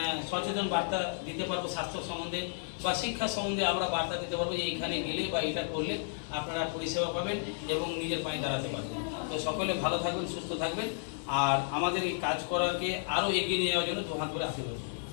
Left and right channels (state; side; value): silent; right; digital silence